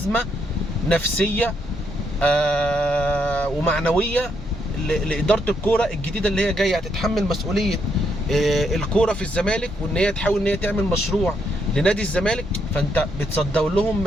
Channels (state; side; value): normal; both; correlation 0.76